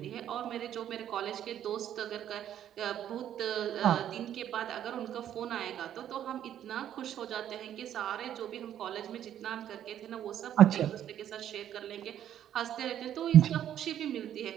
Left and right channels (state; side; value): quieter; left; 10.6 dB